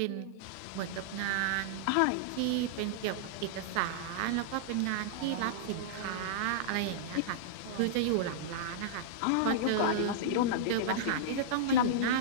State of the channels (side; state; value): both; different; correlation -0.02